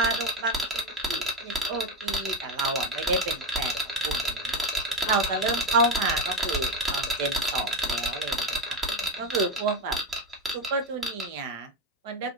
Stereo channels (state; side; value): normal; both; correlation 0.13